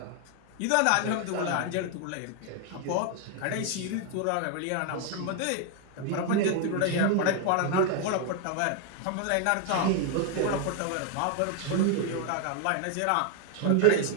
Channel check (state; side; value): different; both; correlation 0.00